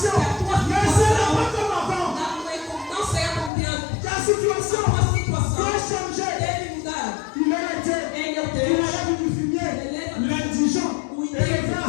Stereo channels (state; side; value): drops out; right; at 3.5 s